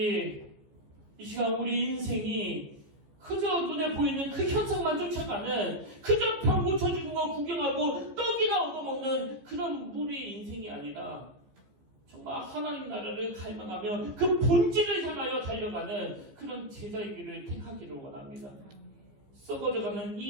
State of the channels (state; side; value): late; left; 15 ms